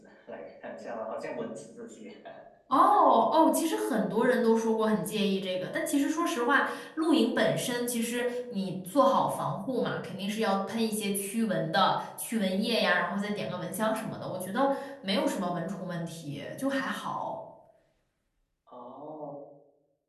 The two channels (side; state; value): both; identical; correlation 1.00